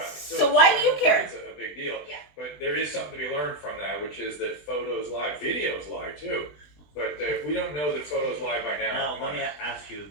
So why do you care? It's a big deal. Yeah. But there is something to be learned from that, which is that photos lie, videos lie too. But if we don't know that photos lie by now. Now, let me ask you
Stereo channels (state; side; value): late; right; 20 ms